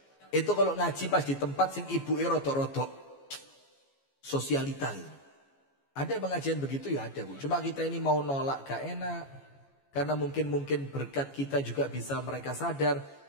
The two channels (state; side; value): late; right; 14 ms